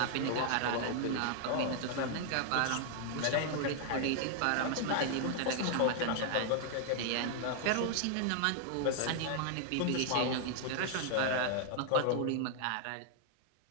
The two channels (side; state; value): both; different; correlation 0.00